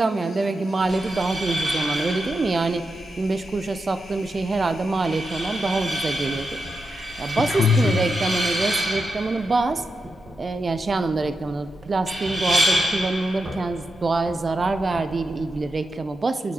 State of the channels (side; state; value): both; normal; correlation 0.88